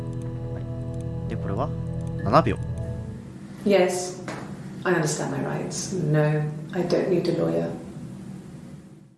はい。で、これは7秒。Yes, I understand my rights. No, I don't need a lawyer.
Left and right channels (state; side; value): identical; both; correlation 1.00